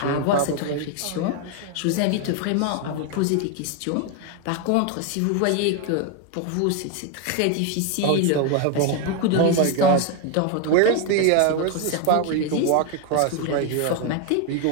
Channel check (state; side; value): different; both; correlation 0.01